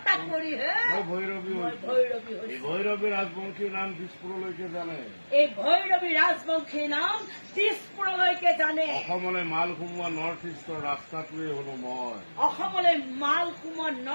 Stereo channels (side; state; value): both; inverted; correlation -1.00